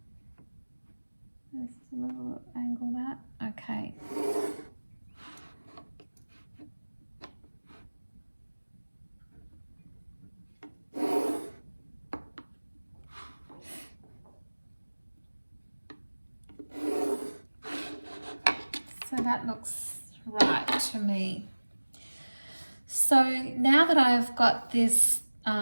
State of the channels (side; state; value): both; inverted; correlation -1.00